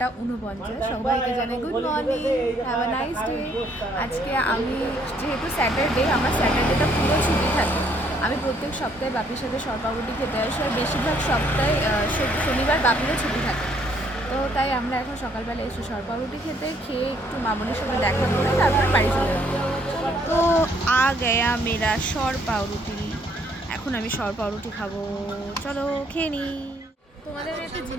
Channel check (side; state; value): both; normal; correlation 0.67